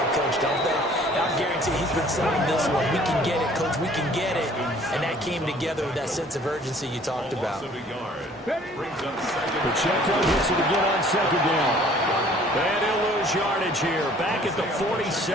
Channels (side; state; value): both; normal; correlation 0.54